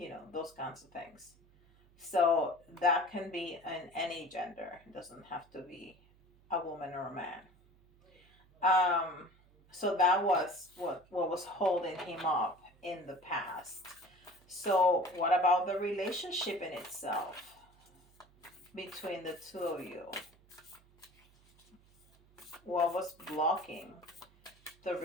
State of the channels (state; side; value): noise; right; hum, 29 dB below the sound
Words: those kinds of things. So that can be in any gender. It doesn't have to be a woman or a man. So that was what was holding him up in the past. So what about the relationship in itself between the two of you? What was blocking the